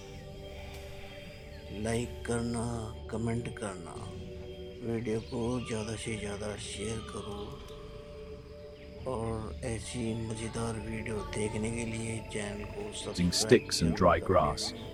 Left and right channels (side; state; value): both; identical; correlation 1.00